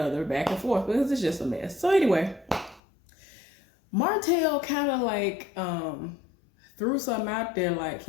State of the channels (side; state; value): right; drops out; at 2.8 s